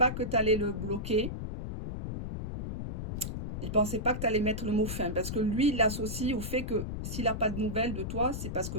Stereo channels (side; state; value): left; noise; rumble, 4 dB below the sound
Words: que tu allais le bloquer. Il ne pensait pas que tu allais mettre le mot fin. Parce que lui, il l'associe au fait que s'il n'a pas de nouvelles de toi, c'est parce